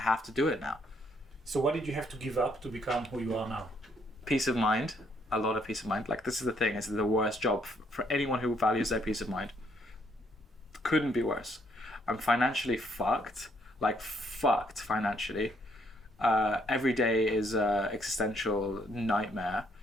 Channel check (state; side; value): normal; both; correlation 0.70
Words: to do it now. So what did you have to give up to become who you are now? Peace of mind. A lot of peace of mind. Like, this is the thing. It's the worst job for anyone who values their peace of mind. Couldn't be worse. I'm financially fucked. Like, fucked financially. Every day is an existential nightmare.